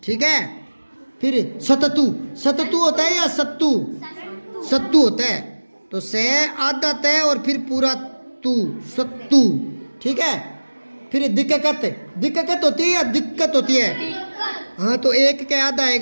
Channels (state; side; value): inverted; both; correlation -1.00